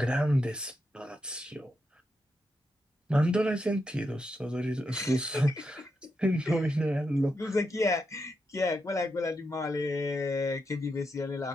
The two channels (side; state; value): both; normal; correlation 0.84